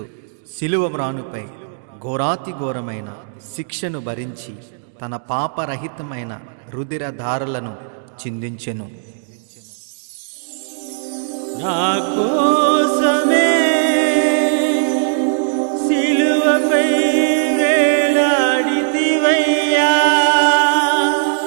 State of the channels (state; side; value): silent; left; digital silence